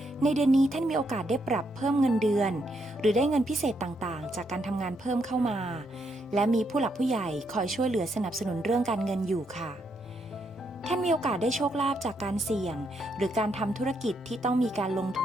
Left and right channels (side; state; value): both; normal; correlation 0.77